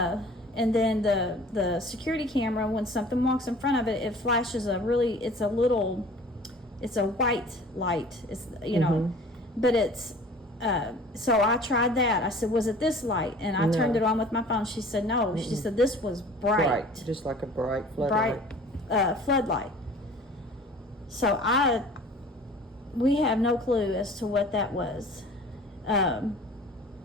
And then the security camera, when something walks in front of it, it flashes it's a white light. It's but it's so I tried that. I said, was it this light? And I turned it on with my phone. She said no. She said this was bright, just like a bright floodlight. Floodlight. So we have no clue as to what that was. And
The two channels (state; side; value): normal; both; correlation 0.46